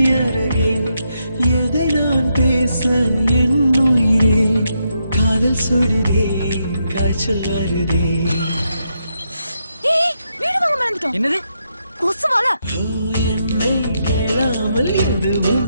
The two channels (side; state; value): both; inverted; correlation -0.81